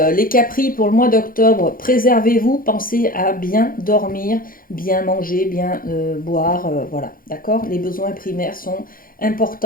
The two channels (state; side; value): late; right; 0.41 ms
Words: capris pour le mois d'octobre, préservez-vous, pensez à bien dormir, bien manger, bien boire, voilà, d'accord? Les besoins primaires sont